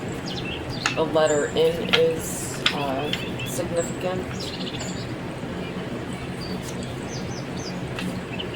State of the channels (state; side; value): identical; both; correlation 1.00